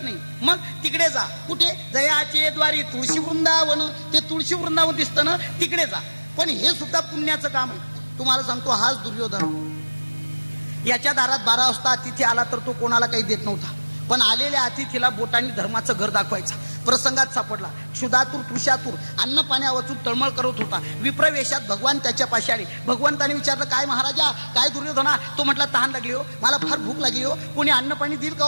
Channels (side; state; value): both; inverted; correlation -1.00